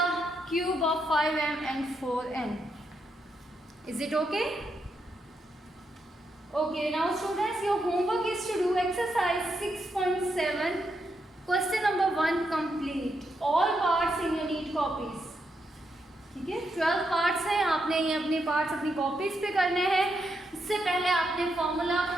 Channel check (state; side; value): normal; both; correlation 0.81